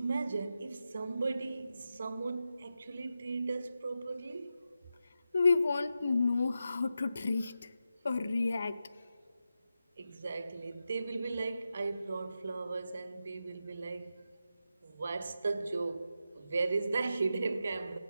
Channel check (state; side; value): inverted; both; correlation -0.89